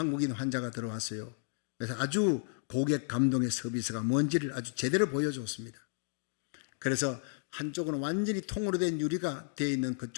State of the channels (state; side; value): silent; right; 56 dB below the other